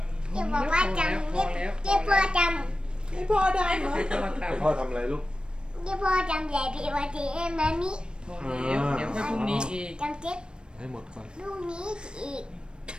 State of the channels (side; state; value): left; late; 0.053 ms